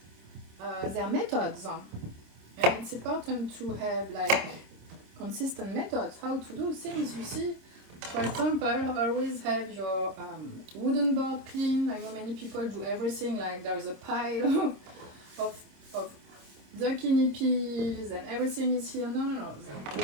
their methods. And it's important to have like consistent methods, how to do things. You see, for example, always have your wooden board clean. I know many people do everything like there is a pile of zucchini peels and everything is here. No, the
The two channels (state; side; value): late; left; 26 ms